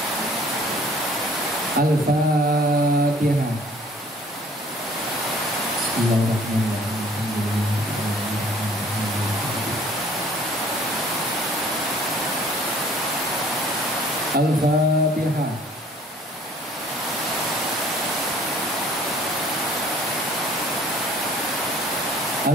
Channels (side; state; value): both; normal; correlation 0.56